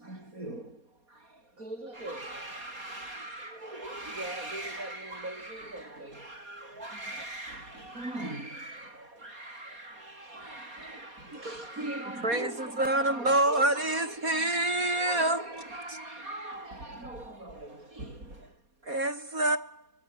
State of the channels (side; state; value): left; late; 4.2 ms